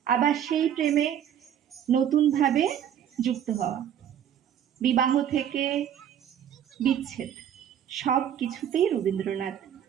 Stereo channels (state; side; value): quieter; left; 9.6 dB